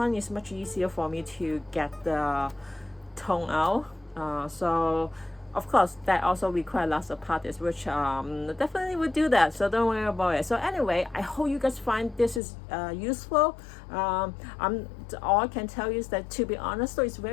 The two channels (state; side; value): drops out; right; at 12.4 s